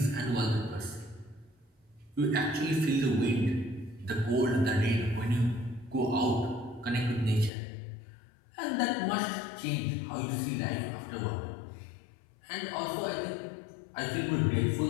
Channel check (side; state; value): right; drops out; at 7.5 s